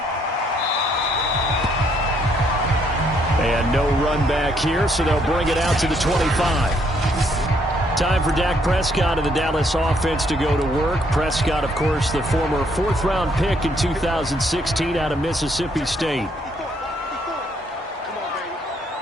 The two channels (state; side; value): normal; both; correlation 0.70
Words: And no run back here, so they'll bring it out to the 25. Time for Dak Prescott and the Dallas offense to go to work. Prescott, of course, the former fourth-round pick in 2016 out of Mississippi State.